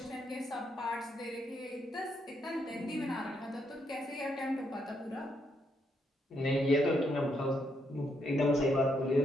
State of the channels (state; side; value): normal; both; correlation 0.77